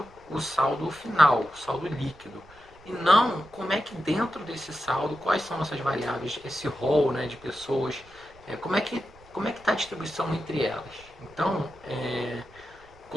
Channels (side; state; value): right; noise; rumble, 25 dB below the sound